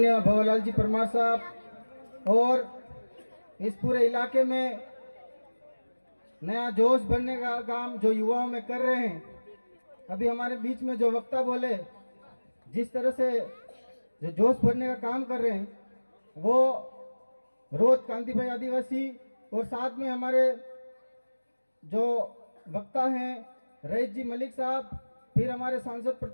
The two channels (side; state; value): both; inverted; correlation -1.00